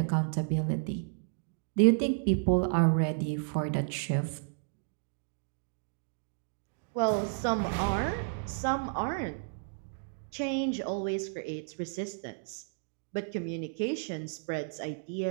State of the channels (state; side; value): silent; left; digital silence